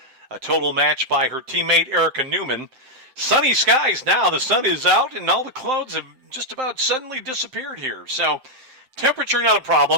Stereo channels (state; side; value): late; left; 7.7 ms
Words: A total match by her teammate Erica Newman. Sunny skies now. The sun is out, and all the clouds have just about suddenly disappeared here. So temperature not a